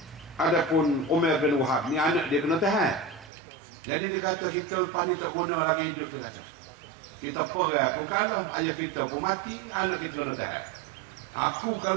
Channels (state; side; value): drops out; left; at 3.3 s